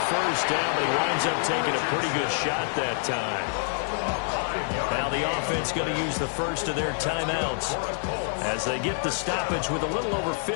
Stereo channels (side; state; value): right; silent; digital silence